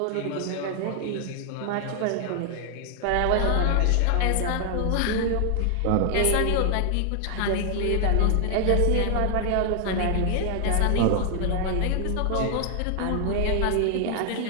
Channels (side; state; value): both; different; correlation 0.00